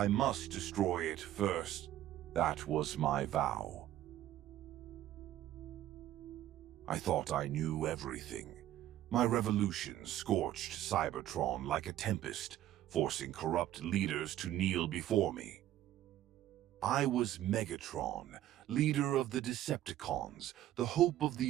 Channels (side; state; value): left; quieter; 13.1 dB